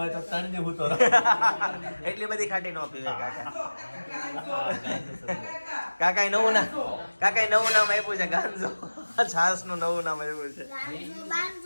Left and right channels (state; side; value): inverted; both; correlation -1.00